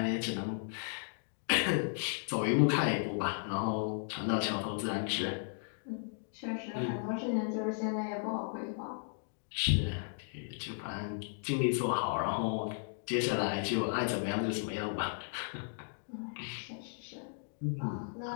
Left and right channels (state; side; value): silent; right; digital silence